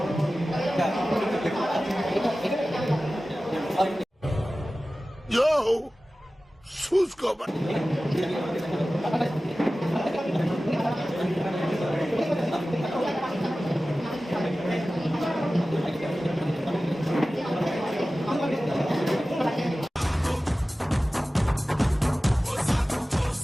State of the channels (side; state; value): both; normal; correlation 0.96